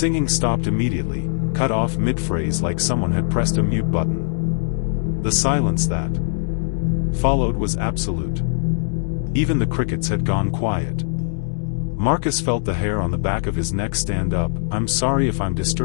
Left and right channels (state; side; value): silent; right; digital silence